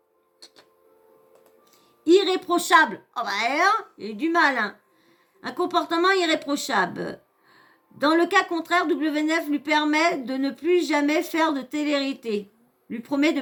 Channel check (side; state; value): both; identical; correlation 1.00